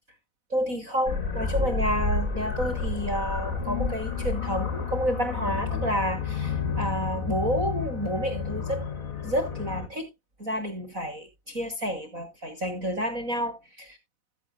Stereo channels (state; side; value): late; left; 4.0 ms